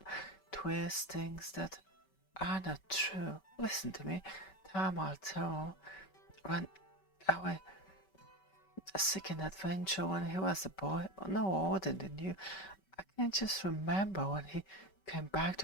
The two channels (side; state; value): right; late; 5.2 ms